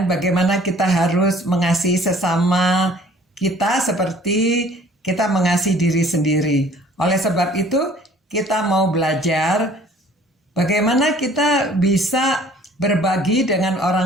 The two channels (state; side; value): normal; both; correlation 0.53